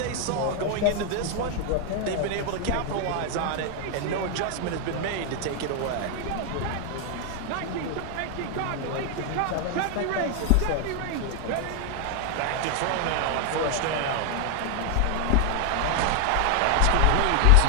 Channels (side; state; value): both; different; correlation 0.00